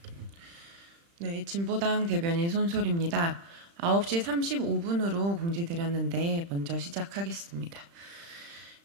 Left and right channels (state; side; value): late; left; 35 ms